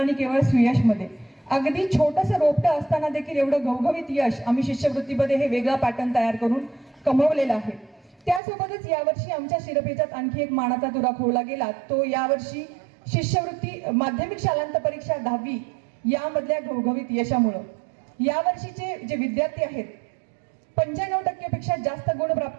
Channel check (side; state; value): left; drops out; at 8.4 s